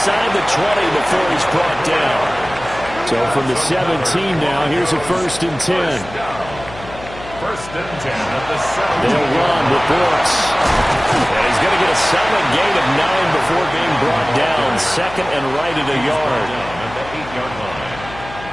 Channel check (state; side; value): noise; left; hum, 15 dB below the sound